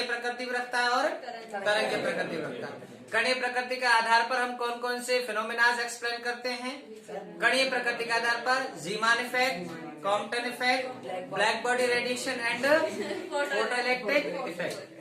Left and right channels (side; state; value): both; identical; correlation 1.00